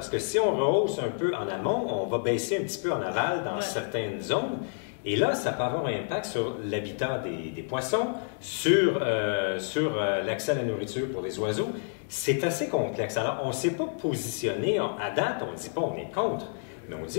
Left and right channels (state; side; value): silent; right; 59 dB below the other